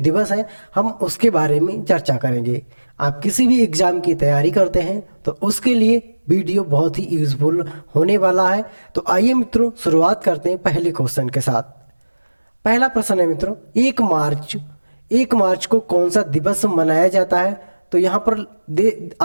हैं हम उसके बारे में चर्चा करेंगे। आप किसी भी एग्ज़ाम की तैयारी करते हैं तो उसके लिए वीडियो बहुत ही यूज़फुल होने वाला है। तो आइए मित्रों शुरुआत करते हैं पहले क्वेश्चन के साथ। पहला प्रश्न है मित्रों, 1 मार्च को कौन सा दिवस मनाया जाता है? तो यहाँ पर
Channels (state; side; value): inverted; both; correlation -1.00